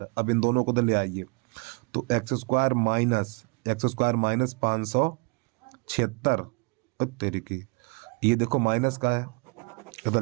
अब इन दोनों को तो ले आइए, तो एक्स स्क्वायर माइनस 576 तेरी की, ये देखो माइनस का है, इधर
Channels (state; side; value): quieter; left; 30.8 dB